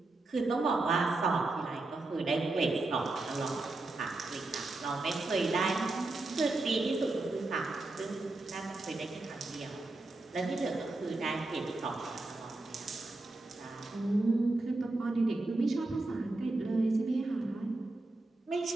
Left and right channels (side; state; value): left; quieter; 3.0 dB